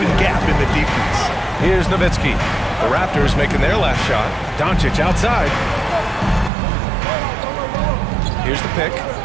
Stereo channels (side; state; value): left; drops out; at 6.5 s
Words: gap in the defense. Here's Nowitzki. The Raptors making their last shot. Doncic outside. Here's the pick.